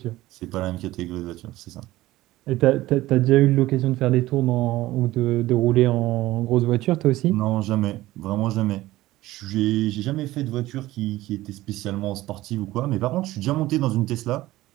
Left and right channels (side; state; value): left; quieter; 16.9 dB